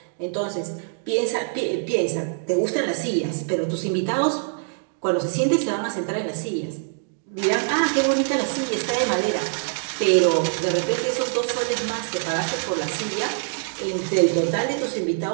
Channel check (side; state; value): left; silent; digital silence